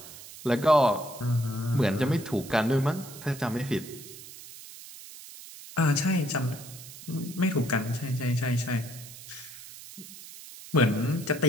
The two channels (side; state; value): right; noise; hiss, 15 dB below the sound